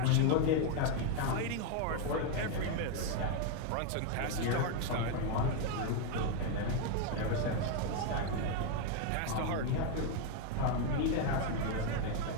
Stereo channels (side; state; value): both; different; correlation 0.01